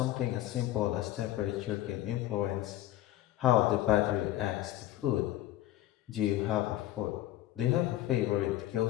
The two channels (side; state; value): right; quieter; 14.3 dB